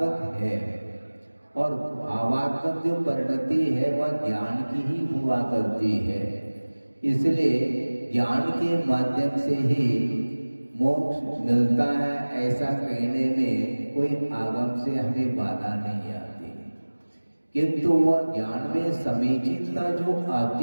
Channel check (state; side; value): inverted; both; correlation -1.00